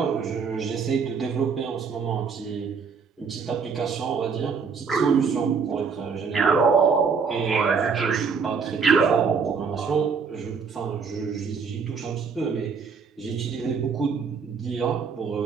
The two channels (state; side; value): quieter; left; 5.6 dB